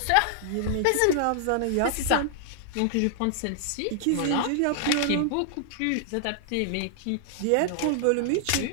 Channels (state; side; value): different; both; correlation -0.01